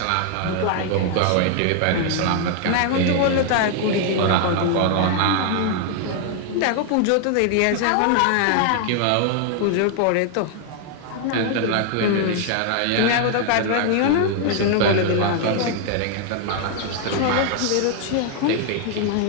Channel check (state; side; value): different; both; correlation 0.00